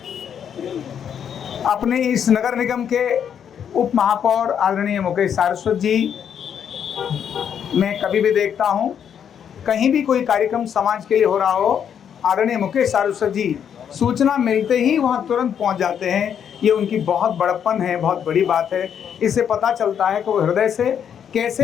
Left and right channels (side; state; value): right; quieter; 8.4 dB